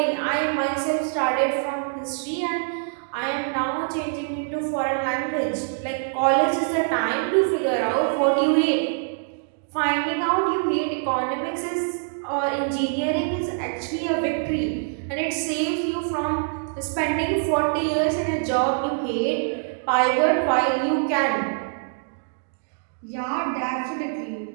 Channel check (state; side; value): silent; left; digital silence